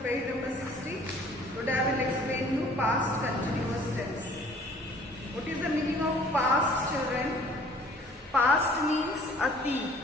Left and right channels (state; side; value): normal; both; correlation 0.53